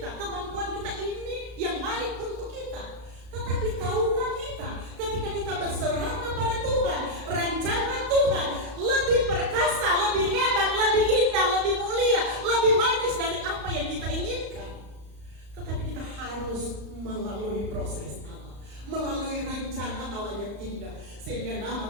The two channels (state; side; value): late; left; 35 ms